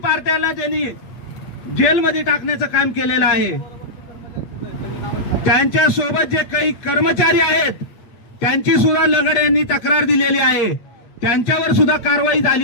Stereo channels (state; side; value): late; right; 8.6 ms